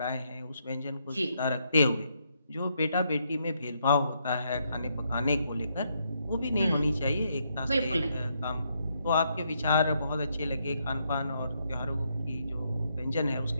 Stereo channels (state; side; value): inverted; both; correlation -0.76